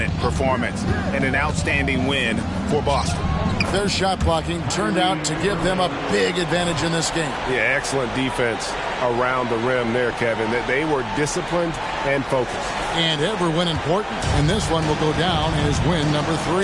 performance and an outstanding win for Boston. Their shot blocking turned out to give them a big advantage in this game. Yeah, excellent defense around the rim there, Kevin. They were disciplined and focused. And every win important, and this one will go down as win number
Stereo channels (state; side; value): identical; both; correlation 1.00